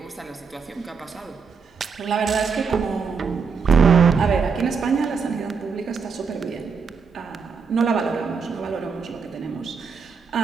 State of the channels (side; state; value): left; quieter; 5.5 dB